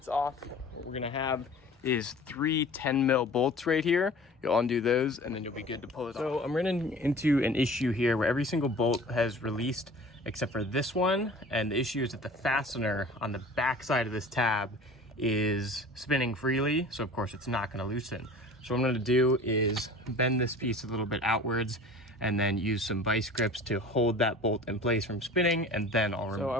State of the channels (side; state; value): both; normal; correlation 0.42